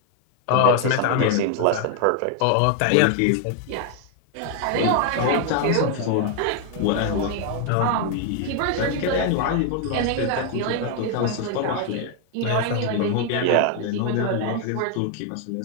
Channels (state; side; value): different; both; correlation 0.01